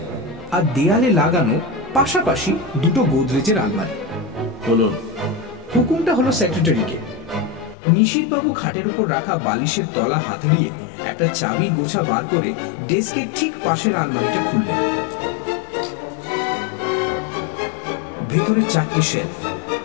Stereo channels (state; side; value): drops out; right; at 7.8 s